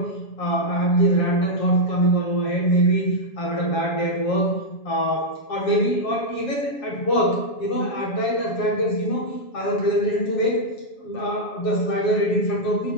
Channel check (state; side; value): late; right; 7.2 ms